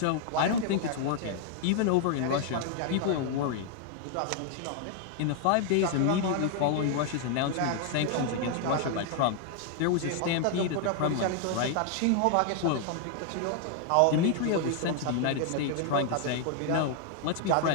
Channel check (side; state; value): both; different; correlation 0.00